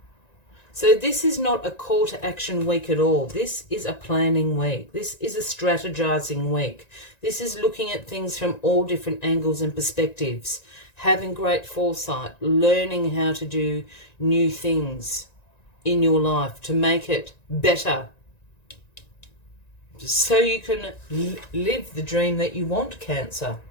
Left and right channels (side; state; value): right; late; 1.9 ms